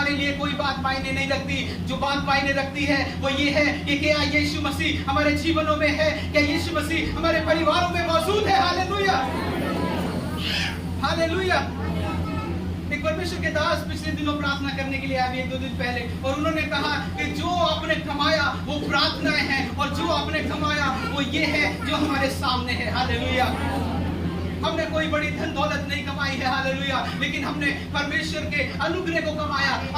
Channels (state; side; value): identical; both; correlation 1.00